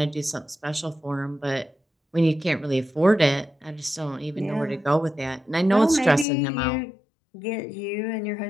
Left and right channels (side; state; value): right; drops out; at 6.2 s